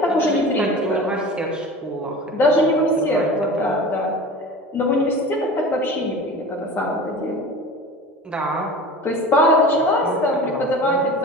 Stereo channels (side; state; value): both; normal; correlation 0.36